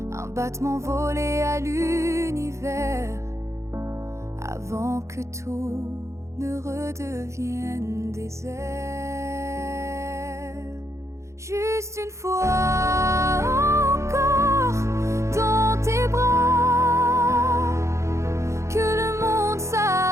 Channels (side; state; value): left; late; 0.14 ms